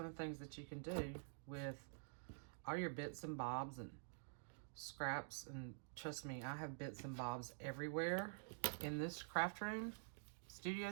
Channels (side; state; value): left; silent; digital silence